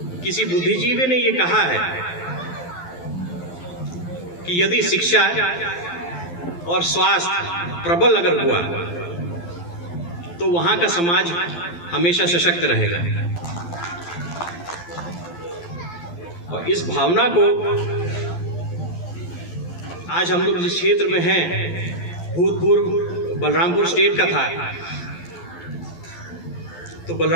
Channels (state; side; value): late; right; 12 ms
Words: किसी बुद्धिजीवी ने ये कहा है कि यदि शिक्षा और स्वास्थ्य प्रबल अगर हुआ तो वहां का समाज हमेशा सशक्त रहेगा। और इस भावना को आज हम लोग जिस क्षेत्र में हैं, भूतपूर्व बलरामपुर स्टेट का था, तो